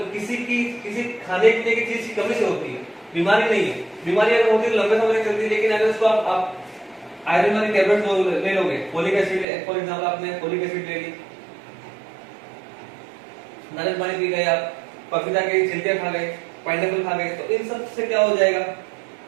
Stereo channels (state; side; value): drops out; left; at 9.5 s